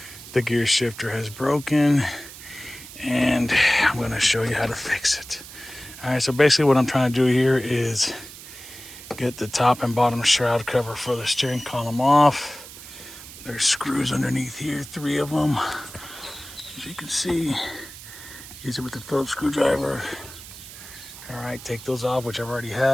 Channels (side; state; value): right; noise; hiss, 15 dB below the sound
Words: The gear shifter has broken and I'm going to show you how to fix it. All right, so basically what I'm trying to do here is get the top and bottom shroud cover for the steering column off. There's screws underneath here, 3 of them. As you can see, use it with the Phillips screwdriver. All right, take those off, which I already